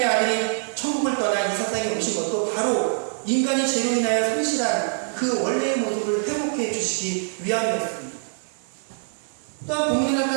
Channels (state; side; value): silent; left; digital silence